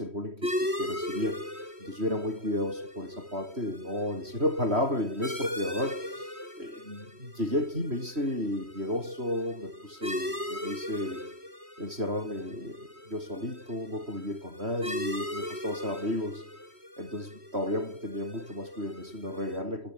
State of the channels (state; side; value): late; left; 3.1 ms